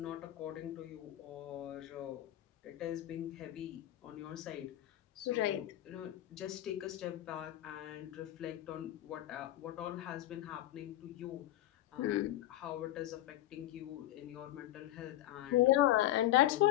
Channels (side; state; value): right; quieter; 14.4 dB